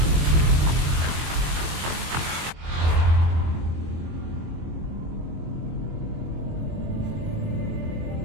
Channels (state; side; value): late; left; 24 ms